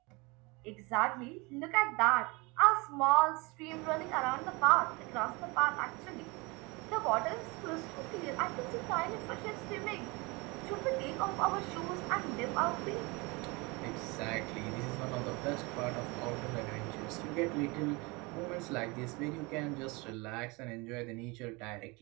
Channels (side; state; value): left; quieter; 26.3 dB